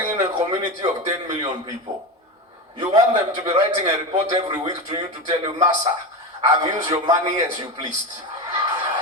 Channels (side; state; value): both; normal; correlation 0.21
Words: in a community of 10 million people. You want them to be writing a report every week to you to tell you, Massa, I've used your money as you pleased.